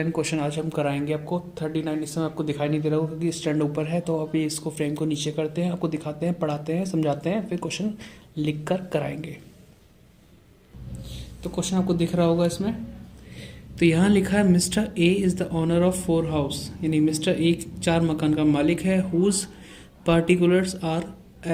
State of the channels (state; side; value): identical; both; correlation 1.00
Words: क्वेश्चन आज हम कराएंगे आपको। 39 इस समय आपको दिखाई नहीं दे रहा होगा क्योंकि स्टैंड ऊपर है, तो अभी इसको फ्रेम को नीचे करते हैं, आपको दिखाते हैं, पढ़ाते हैं, समझाते हैं, फिर क्वेश्चन लिख कर कराएंगे। तो क्वेश्चन आपको दिख रहा होगा इसमें। तो यहाँ लिखा है mister A is the owner of 4 house, यानी मिस्टर ए 4 मकान का मालिक है। Whose particulars are